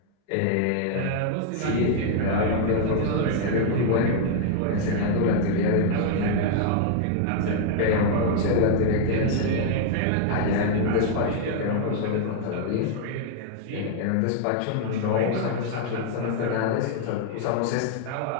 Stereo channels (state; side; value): different; both; correlation 0.00